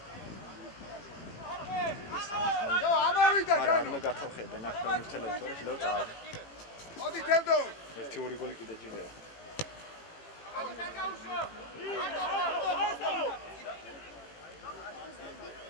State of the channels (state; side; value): late; right; 18 ms